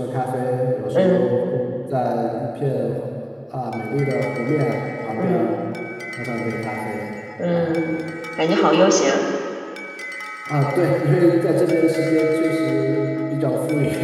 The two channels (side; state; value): both; identical; correlation 1.00